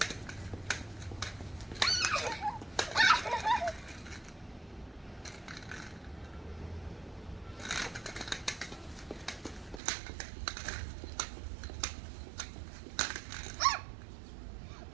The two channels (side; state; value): left; drops out; at 9.8 s